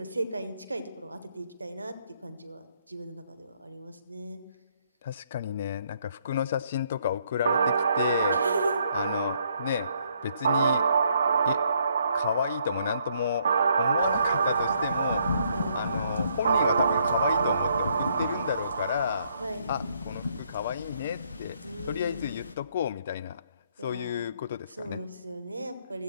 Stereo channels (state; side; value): inverted; both; correlation -0.70